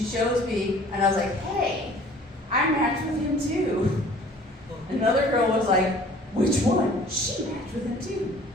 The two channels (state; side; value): normal; both; correlation 0.51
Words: shows me, and I was like, hey, I matched with him too. Another girl was like, which one? She matched with him too.